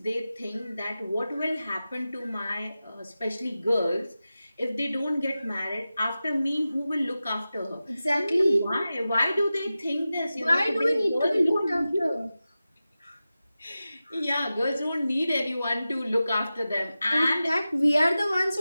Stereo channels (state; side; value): inverted; both; correlation -0.94